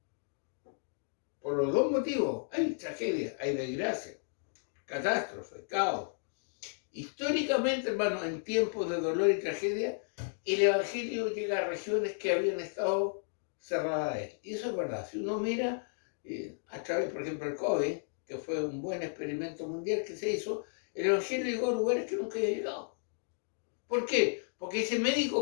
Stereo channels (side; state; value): right; silent; digital silence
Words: Por los dos motivos, hay tragedia, hay desgracia, catástrofe, caos. Históricamente, hermanos, en tiempos de dolor y tragedia, el Evangelio llega a regiones que habían estado cerradas a él. Y eso es verdad. Si uno mira a través, por ejemplo, el COVID, que fue un buen experimento mundial que se hizo, el Evangelio llegó a lugares que nunca había llegado. ¿Por qué? Porque ese